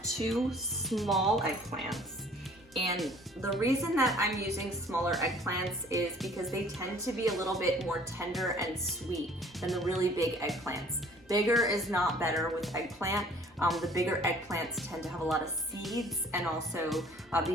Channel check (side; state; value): both; normal; correlation 0.54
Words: 2 small eggplants. And the reason that I'm using smaller eggplants is because they tend to be a little bit more tender and sweet than the really big eggplants. Bigger is not better with eggplant. The bigger eggplants tend to have a lot of seeds and also